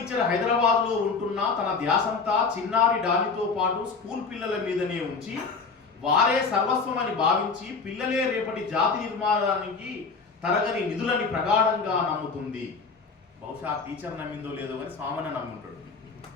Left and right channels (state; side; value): quieter; right; 4.7 dB